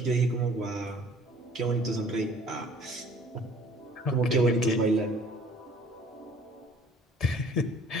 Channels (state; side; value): normal; both; correlation 0.54